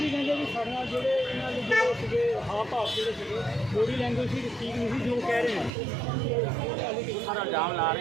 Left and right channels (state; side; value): drops out; left; at 5.7 s